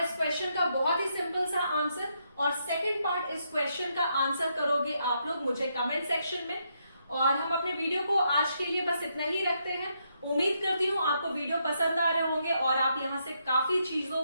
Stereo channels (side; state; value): both; inverted; correlation -0.78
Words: क्वेश्चन का बहुत ही सिंपल सा आंसर। और सेकंड पार्ट इस क्वेश्चन का आंसर करोगे आप लोग मुझे कमेंट सेक्शन में। और हम अपने वीडियो को आज के लिए बस इतना ही रखते हैं। उम्मीद करती हूँ आपको वीडियो पसंद आ रहे होंगे और आप यहाँ से काफी चीजों